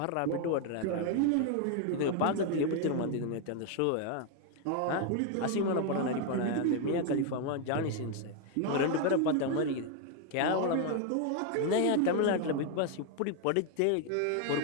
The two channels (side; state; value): both; different; correlation 0.01